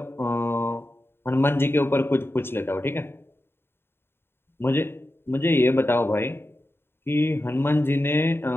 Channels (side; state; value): right; late; 0.11 ms